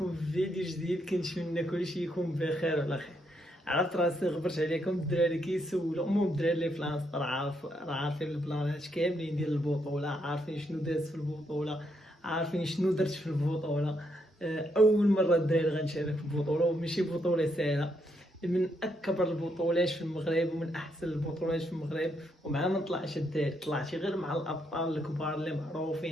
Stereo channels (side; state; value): both; normal; correlation 0.77